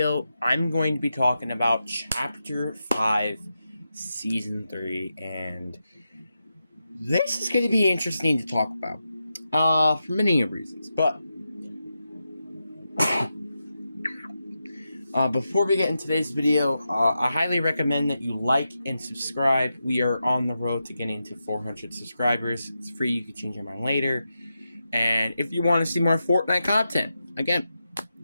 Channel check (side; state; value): both; inverted; correlation -0.88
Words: I'm going to be talking about Chapter 5, Season 3, and this is going to be interesting to talk about, for many reasons. But before we get into today's video, I highly recommend that you like and subscribe. We are on the road to getting to 400 subscribers. It's free. You can change your mind later. And if you want to see more Fortnite content, again,